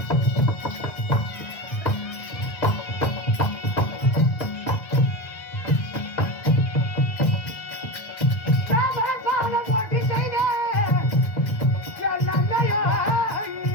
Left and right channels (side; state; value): right; late; 1.6 ms